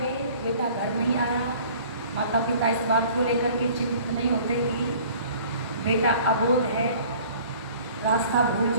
बेटा घर नहीं आया, माता पिता इस बात को लेकर के चिंतित नहीं होते कि बेटा अबोध है, रास्ता भूल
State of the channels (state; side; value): inverted; both; correlation -0.50